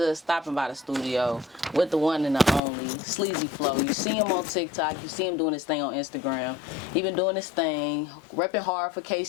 of stopping by the studio with the one and the only, Sleazy Flow. You see him on TikTok. You see him doing his thing on Instagram. He been doing his thing, repping hard for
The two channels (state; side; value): drops out; right; at 2.6 s